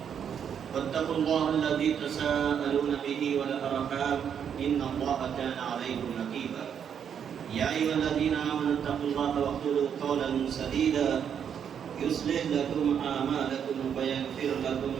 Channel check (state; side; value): quieter; left; 8.1 dB